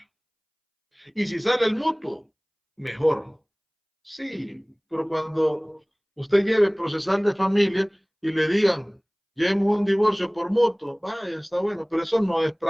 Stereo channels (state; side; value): identical; both; correlation 1.00